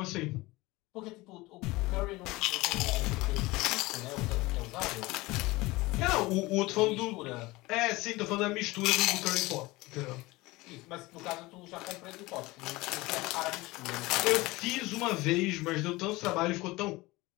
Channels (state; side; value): quieter; right; 21.1 dB